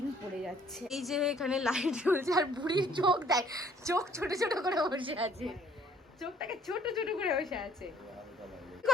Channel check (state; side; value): normal; both; correlation 0.60